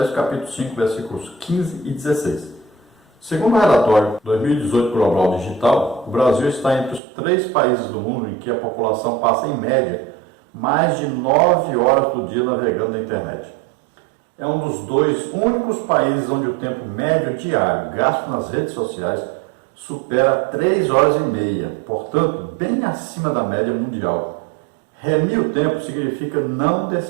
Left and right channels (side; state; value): left; drops out; at 7.0 s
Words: capítulo 5, versículos 15 e 16. Segundo o relatório 2018 Global Digital, o Brasil está entre os 3 países do mundo em que a população passa, em média, mais de 9 horas do dia navegando na internet. É um dos 2 únicos países onde o tempo médio diário gasto nas redes sociais supera 3 horas e meia, portanto, bem acima da média mundial. Remir o tempo significa não